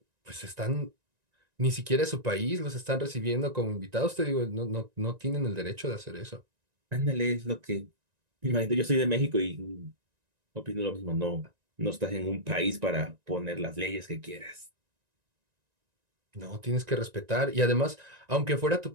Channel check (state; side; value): late; left; 1.9 ms